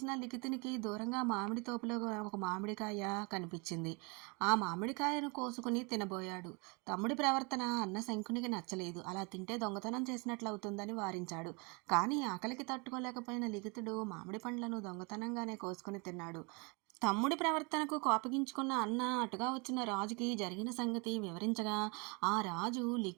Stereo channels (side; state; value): left; quieter; 30.8 dB